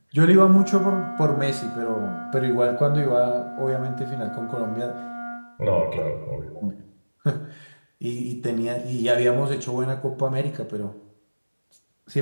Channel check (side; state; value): both; inverted; correlation -1.00